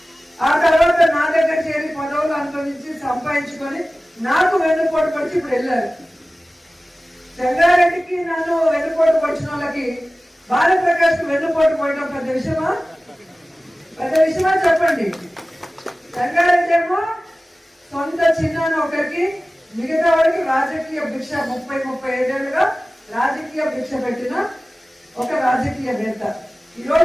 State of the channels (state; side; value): normal; both; correlation 0.97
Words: ఆ తర్వాత నా దగ్గర చేరి పదవులు అనుభవించి సంపాదించుకొని నాకు వెన్నుపోటు పొడిచి ఇప్పుడు వెళ్ళారు. సంగారెడ్డికి నన్ను వెన్నుపోటు పొడిచిన వాళ్ళకి భారతప్రకాష్ కు వెన్నుపోటు పోయడం పెద్ద విషయమా? పెద్ద విషయమా చెప్పండి. సంగారెడ్డి ఏమో సొంత చిన్నాన్న ఒకరికి, మిగతా వాడికి రాజకీయ భిక్ష 30-35 ఏళ్ళుగా రాజకీయ భిక్ష పెట్టిన ఒక రాజకీయవేత్త.